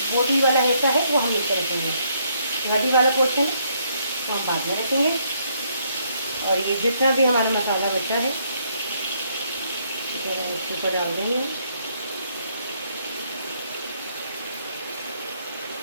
मोटी वाला हिस्सा है वो हम नीचे रखेंगे, हड्डी वाला पोर्शन है वो हम बाद में रखेंगे। और ये जितना भी हमारा मसाला बचा है इसके ऊपर डाल देंगे।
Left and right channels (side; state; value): both; inverted; correlation -0.71